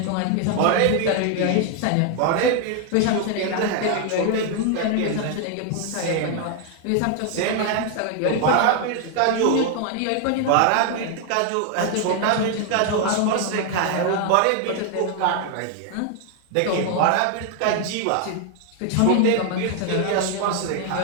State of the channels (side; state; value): both; different; correlation 0.00